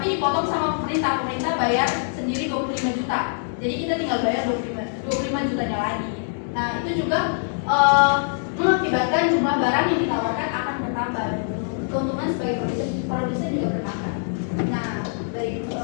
dipotong sama pemerintah bayar sendiri 25 juta. Jadi kita tinggal bayar 25 jutanya lagi. Nah, itu juga mengakibatkan jumlah barang yang ditawarkan akan bertambah. Keuntungan sebagai produsen juga bertambah. Nah, dari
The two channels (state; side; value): silent; right; digital silence